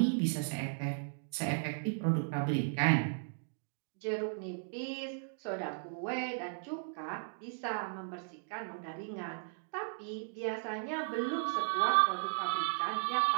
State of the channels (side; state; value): left; silent; digital silence